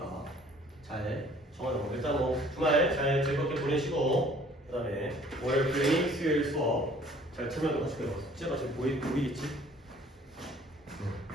잘 정하자고. 일단 뭐 주말 잘 즐겁게 보내시고 그 다음에 월요일 클리닉 수요일 수업 잘 참여하도록 하시고요. 숙제가 지금 보이겠지?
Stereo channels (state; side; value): normal; both; correlation 0.55